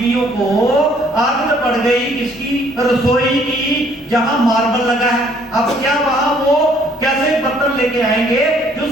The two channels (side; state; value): both; normal; correlation 0.63